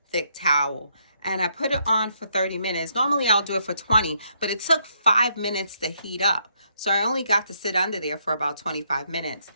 thick towel. And I put it on for 30 minutes. Normally I'll do it for 20, but it took 5 minutes to heat up. So I only got to sit under there for about 25 minutes.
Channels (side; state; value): both; inverted; correlation -0.74